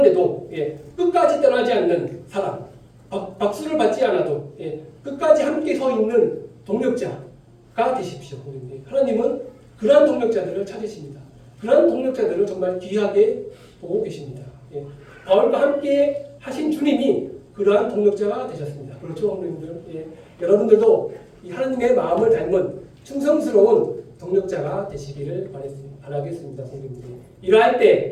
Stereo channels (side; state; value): both; identical; correlation 1.00